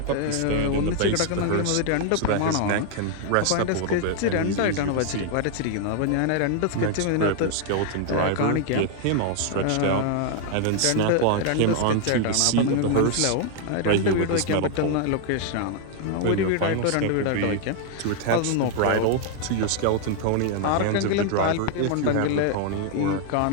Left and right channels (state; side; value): different; both; correlation 0.00